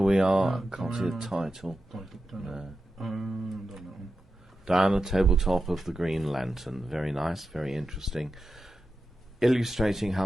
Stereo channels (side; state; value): both; normal; correlation 0.91